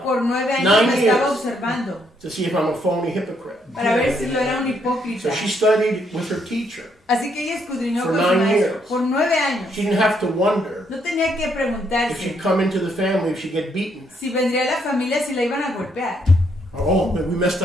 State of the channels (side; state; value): both; normal; correlation 0.73